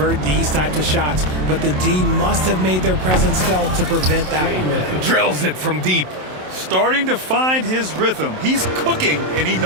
these types of shots, but the D must have made their presence felt to prevent that one. Drills it from deep. Starting to find his rhythm. He's cooking, and he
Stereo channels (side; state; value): left; late; 27 ms